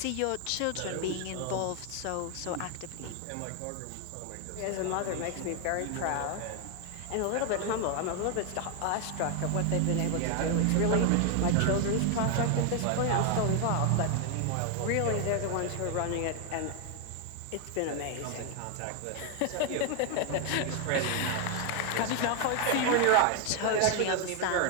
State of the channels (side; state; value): both; different; correlation 0.00